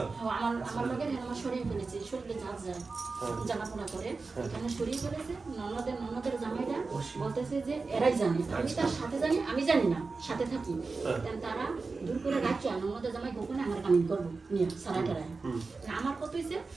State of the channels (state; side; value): quieter; left; 4.1 dB